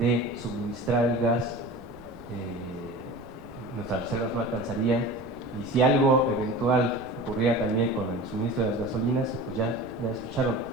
suministrar el gas, nuestras reservas no alcanzarían, y si algo eventual ocurriera también con el suministro de las gasolinas, pues ya escucharon,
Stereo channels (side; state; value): right; noise; rumble, 22 dB below the sound